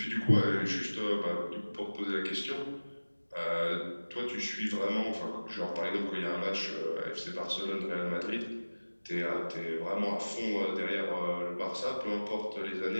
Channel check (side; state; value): both; inverted; correlation -1.00